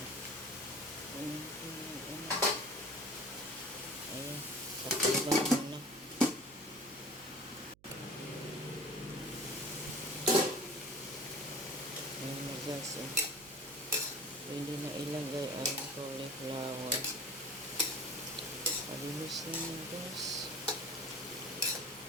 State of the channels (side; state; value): right; noise; hum, 28 dB below the sound